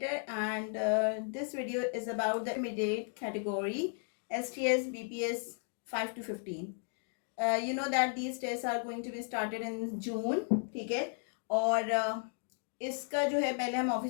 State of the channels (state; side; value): silent; right; 55 dB below the other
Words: and this video is about the intermediate category STS BPS 5 to 15. You know that these tests are going to be started in June, ठीक है. और इसका जो है पहले हम